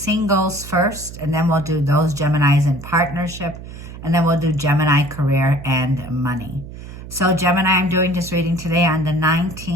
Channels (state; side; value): noise; right; hum, 13 dB below the sound